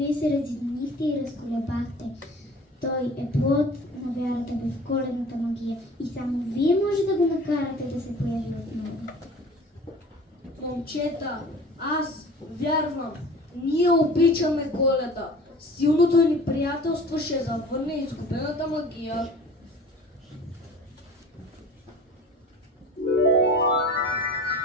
се разединихте и разколебахте. Той е плод на вярата ви в коледната магия и само вие може да го накарате да се появи отново. Момчета, аз вярвам. Ние обичаме Коледа. Силното ни приятелство ще завърне изгубената магия.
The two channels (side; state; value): both; normal; correlation 0.43